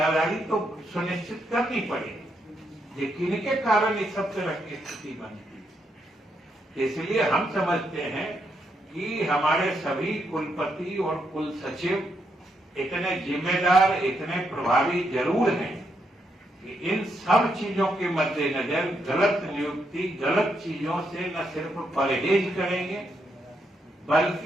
तो सुनिश्चित करनी पड़ेगी, लेकिन इनके कारण इस सब तरह की स्थिति बनती है। इसलिए हम समझते हैं कि हमारे सभी कुलपति और कुल सचिव इतने जिम्मेदार, इतने प्रभावी जरूर हैं कि इन सब चीजों के मद्देनजर गलत नियुक्ति, गलत चीजों से न सिर्फ परहेज करेंगे,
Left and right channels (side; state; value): both; normal; correlation 0.79